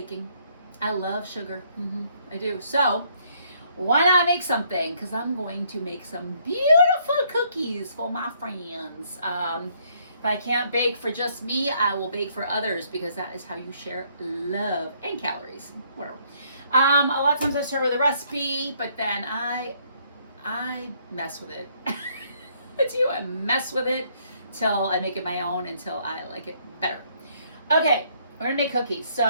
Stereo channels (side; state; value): both; inverted; correlation -0.67